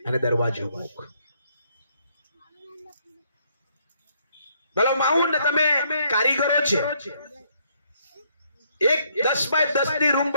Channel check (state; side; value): inverted; both; correlation -0.70